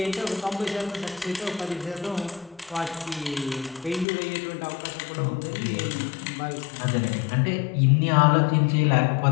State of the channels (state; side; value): drops out; right; at 4.0 s